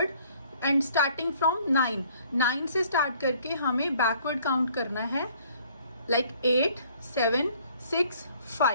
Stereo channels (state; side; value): inverted; both; correlation -0.59